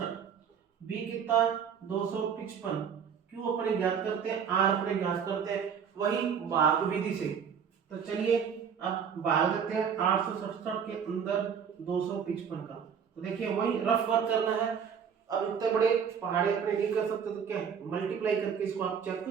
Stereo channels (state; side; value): quieter; left; 7.3 dB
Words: बी कितना 255, क्यू अपने ज्ञात करते हैं, आर अपने ज्ञात करते हैं वही भाग विधि से। तो चलिए अब भाग देते हैं 867 के अंदर 255 का। तो देखिए वही रफ वर्क करना है। अब इतने बड़े पहाड़े अपने नहीं कर सकते तो क्या मल्टीप्लाई करके इसको आप चेक